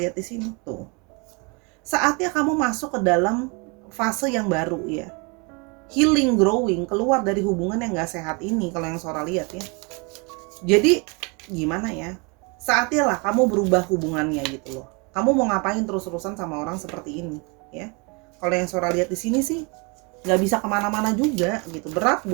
di sini tuh. Saatnya kamu masuk ke dalam fase yang baru ya. Healing, growing, keluar dari hubungan yang gak sehat ini kalau yang Sora lihat ya. Jadi gimana ya? Saatnya lah kamu berubah hubungannya gitu loh. Kamu mau ngapain terus-terusan sama orang seperti ini ya? Kalau yang Sora lihat di sini sih nggak bisa kemana-mana juga gitu, berat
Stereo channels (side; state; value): left; quieter; 31.2 dB